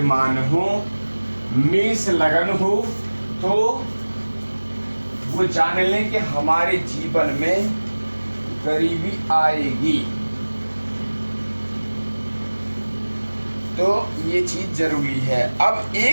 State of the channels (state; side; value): inverted; both; correlation -1.00